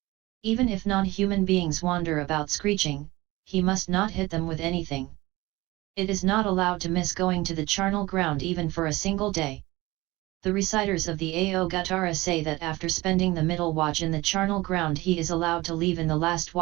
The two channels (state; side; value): quieter; left; 20.3 dB